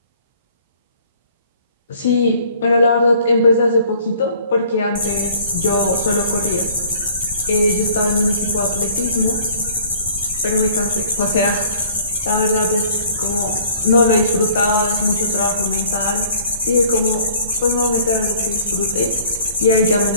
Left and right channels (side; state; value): both; inverted; correlation -0.53